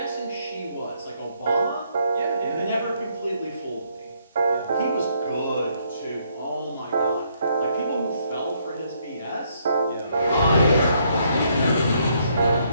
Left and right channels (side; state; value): both; inverted; correlation -0.71